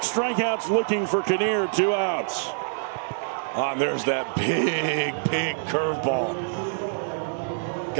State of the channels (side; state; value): left; silent; 61 dB below the other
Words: strikeouts looking for Kinnear, 2 outs. And there's that big curveball.